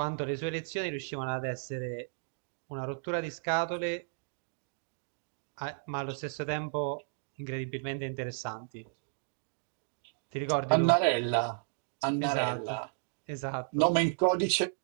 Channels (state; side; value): silent; left; digital silence